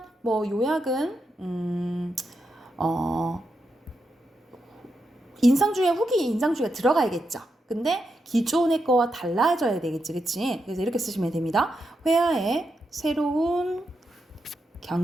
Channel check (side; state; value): both; normal; correlation 0.85